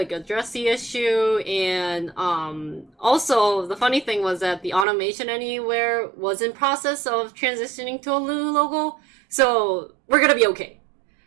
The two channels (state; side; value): drops out; left; at 4.9 s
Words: address the issue, and also the funny thing was that the automation anywhere was in process of transitioning to a new logo, so we're gonna be okay.